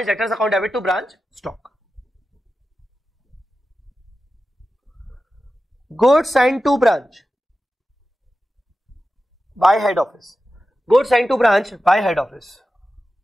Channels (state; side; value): normal; both; correlation 0.93